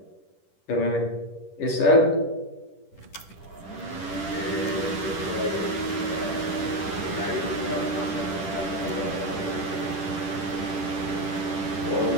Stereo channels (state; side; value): late; right; 10 ms